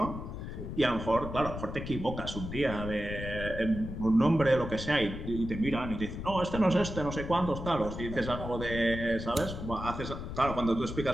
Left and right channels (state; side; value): noise; left; rumble, 7 dB below the sound